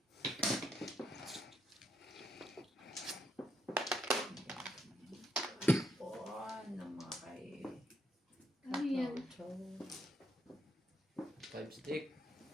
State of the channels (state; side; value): normal; both; correlation 0.76